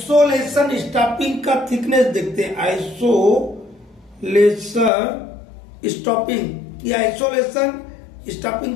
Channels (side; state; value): right; drops out; at 4.9 s